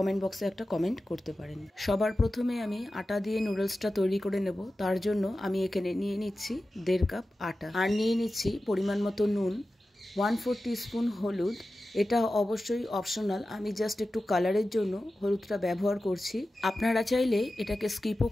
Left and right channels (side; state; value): both; normal; correlation 0.94